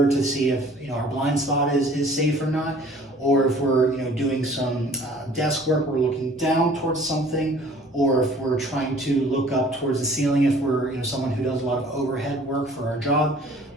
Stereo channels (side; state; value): both; normal; correlation 0.52